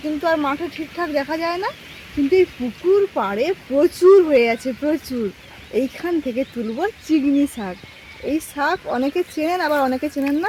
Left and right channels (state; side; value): identical; both; correlation 1.00